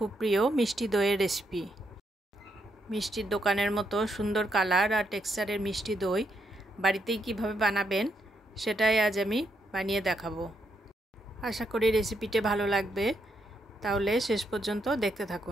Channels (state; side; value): normal; both; correlation 0.78